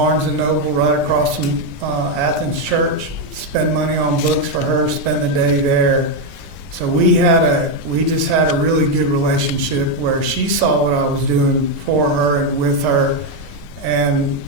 & Noble right across from Athens Church, spend money on books for her, spend the day there. So we just had a really good relationship where she saw what I was doing for her and with her, and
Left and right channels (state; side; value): normal; both; correlation 0.04